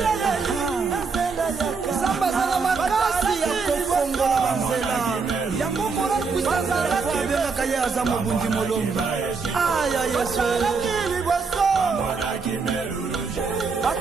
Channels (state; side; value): quieter; left; 4.8 dB